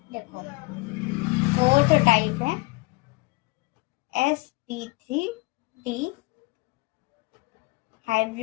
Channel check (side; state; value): right; quieter; 24.6 dB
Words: देखो 4th टाइप है sp3d